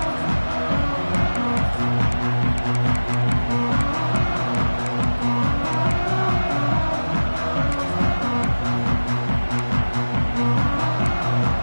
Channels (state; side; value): inverted; both; correlation -1.00